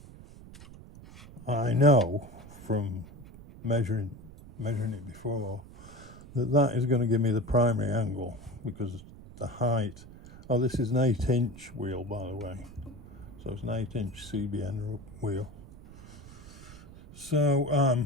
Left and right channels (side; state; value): right; noise; rumble, 18 dB below the sound